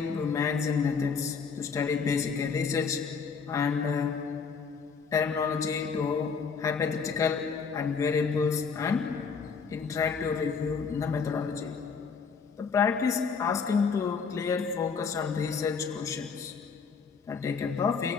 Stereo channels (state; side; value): quieter; right; 5.6 dB